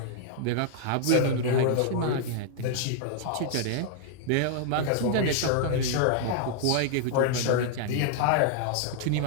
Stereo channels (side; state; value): both; different; correlation 0.00